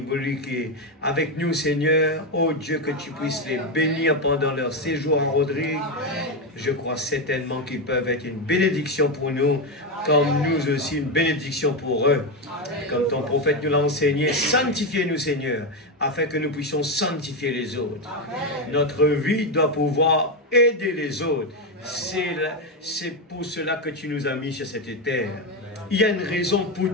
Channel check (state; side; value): normal; both; correlation 0.09